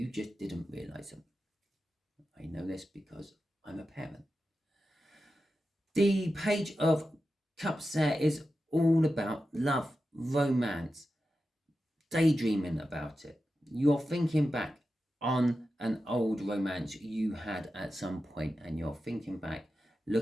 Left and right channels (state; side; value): normal; both; correlation 0.91